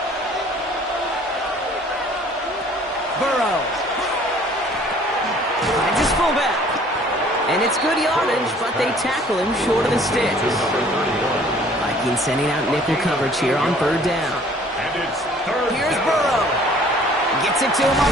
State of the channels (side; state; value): both; normal; correlation 0.55